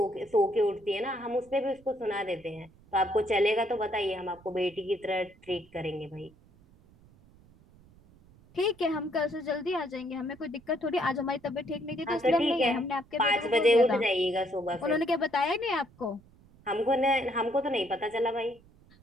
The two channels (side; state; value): right; noise; rumble, 27 dB below the sound